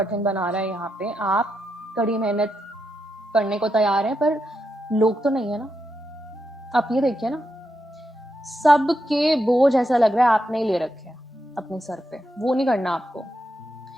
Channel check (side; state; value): both; normal; correlation 0.84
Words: बना रहा है, यहाँ पे आप कड़ी मेहनत करने को तैयार हैं, पर लोग तो नहीं है ना। आप ये देखिए ना, सबके बोझ ऐसा लग रहा है आपने ही ले रखे हैं अपने सर पे, वो नहीं करना आपको,